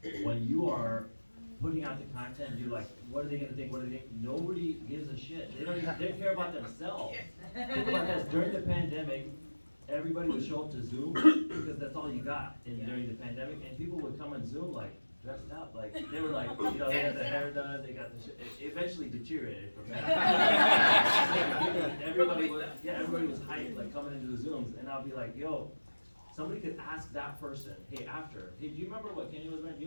when you are putting out the content, you're like, what are they gonna think? What are they think? Nobody gives a shit. They care about themselves. Think about this, during the pandemic, everybody would show up to Zoom because that's all you got during the pandemic, and people would come on Zoom like, dressed up, like, they were like, you know, they had their hair done, they got the shit, it eventually deteriorated from that. Everybody was hyped, like, coming into the Zooms, and I'll be like, yo, somebody could ask that person, hey, after, hey, do you remember what Keenya was wearing? Do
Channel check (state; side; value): inverted; both; correlation -1.00